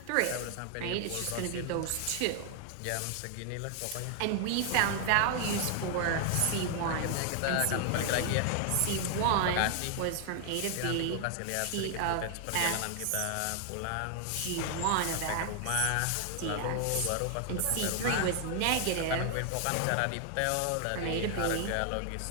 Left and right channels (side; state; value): both; different; correlation 0.00